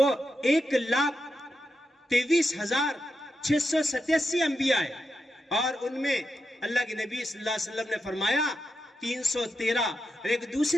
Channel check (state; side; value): normal; both; correlation 0.87